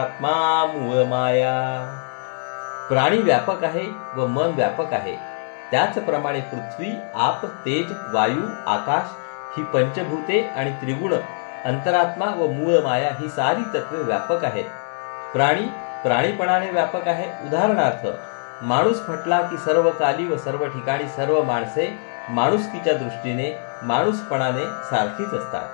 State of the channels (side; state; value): right; silent; 57 dB below the other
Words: मूळ माया. प्राणी व्यापक आहे व मन व्यापक आहे. त्याचप्रमाणे पृथ्वी, आप, तेज, वायू, आकाश ही पंचभूते आणि त्रिगुण, अंतरात्मा व मूळ माया ही सारी तत्वे व्यापक आहेत. प्राणी प्राणीपणाने व्यापक आहे. उदाहरणार्थ, माणूस म्हटला की सर्व काली व सर्व ठिकाणी सर्व माणसे माणुसकीच्या दृष्टीने माणूसपणाने सारखीच असतात.